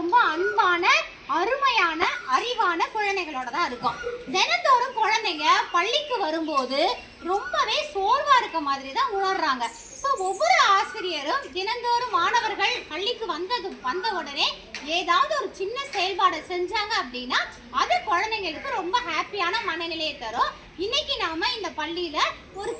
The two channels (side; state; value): both; identical; correlation 1.00